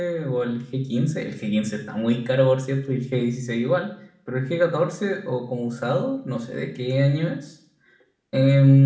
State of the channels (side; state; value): both; identical; correlation 1.00